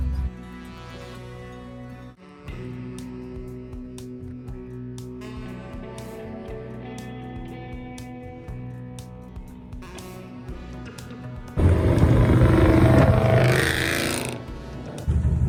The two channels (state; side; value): identical; both; correlation 1.00